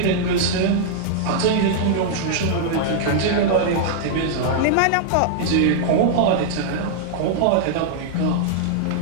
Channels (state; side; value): different; both; correlation -0.01